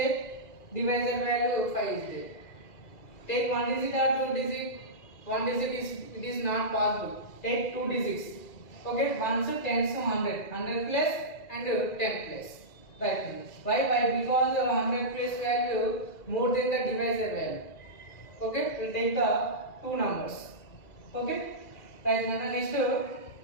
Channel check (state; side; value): late; right; 2.2 ms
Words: Divisor value 5 is there. Take 1 digit or 2 digit. 1 digit is not possible. Take 2 digits. Okay, 1's 10's 100. 100 plus and 10 plus. Right. Why? Because the 100 place value more than the divisor value. Okay, we'll take the 2 numbers. Okay. Right. Now next